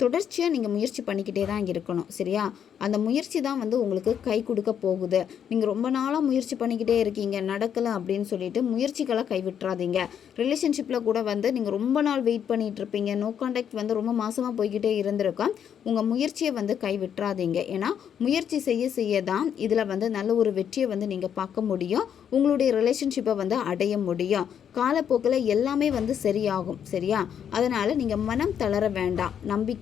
நீங்கள் முயற்சி பண்ணிக்கிட்டே தான் இருக்கணும், சரியா? அந்த முயற்சி தான் வந்து உங்களுக்கு கை கொடுக்க போகுது. நீங்கள் ரொம்ப நாளாக முயற்சி பண்ணிக்கிட்டே இருக்கீங்க, நடக்கலை அப்படின்னு சொல்லிட்டு முயற்சிகளை கைவிட்டுறாதீங்க. ரிலேஷன்ஷிப்பில் கூட வந்து நீங்கள் ரொம்ப நாள் வெயிட் பண்ணிகிட்டு இருப்பீங்க, நோ கான்டாக்ட் வந்து ரொம்ப மாதமாக போய்கிட்டே இருந்திருக்கோம். உங்கள் முயற்சியை வந்து கைவிட்டுறாதீங்க. ஏன்னா முயற்சி செய்ய தான் இதில் வந்து நல்ல ஒரு வெற்றியை வந்து நீங்கள் பார்க்க முடியும், உங்களுடைய ரிலேஷன்ஷிப்பை வந்து அடைய முடியும். காலப்போக்கில் எல்லாமே வந்து சரியாகும், சரியா? அதனால் நீங்கள் மனம் தளர வேண்டாம்,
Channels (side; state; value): right; quieter; 8.6 dB